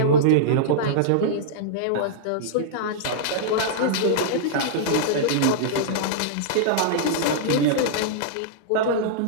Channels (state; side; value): different; both; correlation -0.03